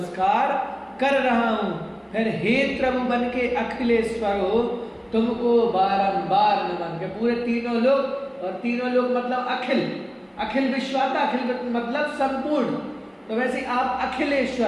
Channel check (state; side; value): identical; both; correlation 1.00